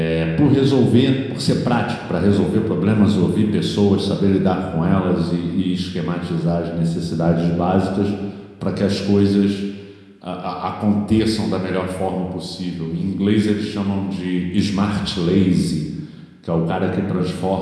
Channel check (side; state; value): both; identical; correlation 1.00